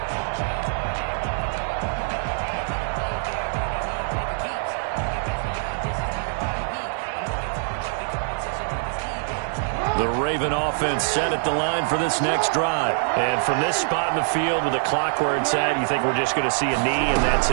The Raven offense set at the line for this next drive. And from this spot in the field with the clock where it's at, you think we're just going to see a knee and that's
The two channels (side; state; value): left; silent; digital silence